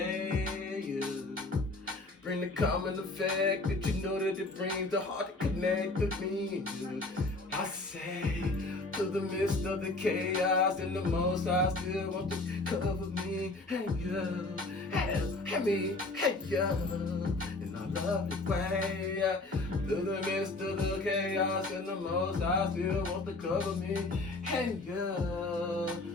you. Bring the common effect that you know that it brings the heart to connect with me and you. I say, through the midst of the chaos and the Most High still want to cover me. Hey, yo, hey me, hey, yo, in a lovely way. Through the midst of the chaos and the Most High still want to cover me. Hey, yo,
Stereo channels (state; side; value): quieter; right; 3.0 dB